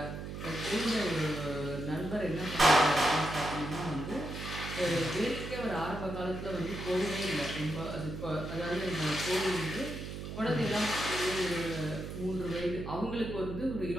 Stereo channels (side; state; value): right; noise; hum, 7 dB below the sound